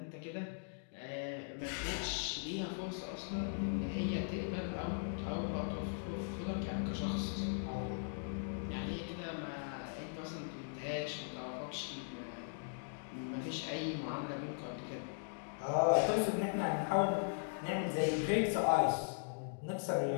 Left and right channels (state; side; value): silent; right; digital silence